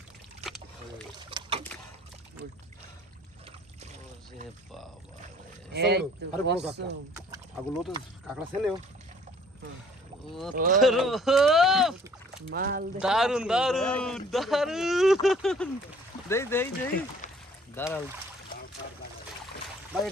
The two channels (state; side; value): normal; both; correlation 0.56